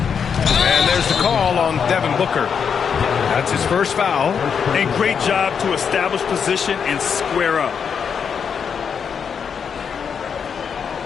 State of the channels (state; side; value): quieter; right; 6.8 dB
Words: And there's the call on Devin Booker. That's his first foul. And great job to establish position and square up.